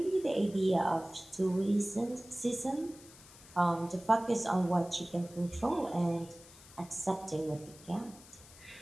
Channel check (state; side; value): noise; left; hiss, 21 dB below the sound